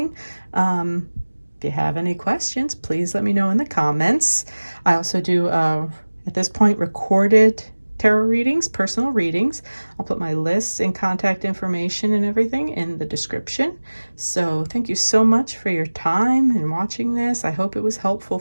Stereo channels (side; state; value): both; inverted; correlation -1.00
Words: If you have any questions, please let me know in the comments. I also do, at this point, recorded tarot readings, personal readings. I'll put my lists and contact information and everything in the description. So thank you so much for your time and watching this. I hope it was helpful